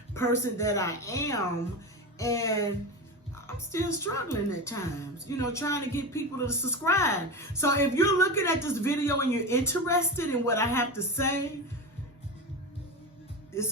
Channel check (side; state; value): both; normal; correlation 0.22